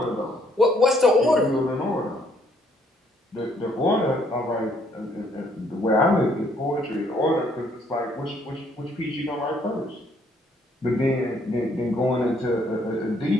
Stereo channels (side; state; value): both; normal; correlation 0.67